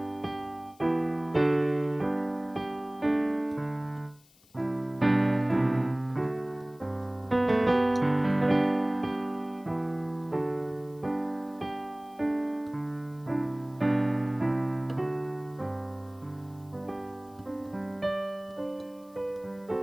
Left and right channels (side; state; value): left; noise; hiss, 29 dB below the sound